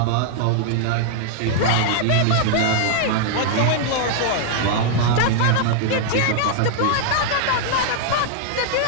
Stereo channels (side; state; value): both; different; correlation -0.01